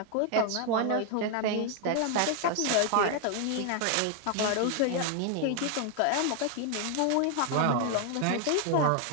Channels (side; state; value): both; different; correlation 0.00